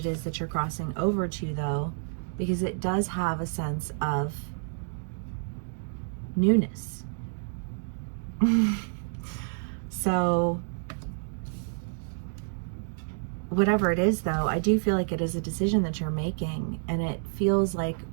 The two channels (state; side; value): silent; left; digital silence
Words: is that you're crossing over to though, because it does have a sense of newness. So whatever it is though, I do feel like it is a decision that you're making, and it feels like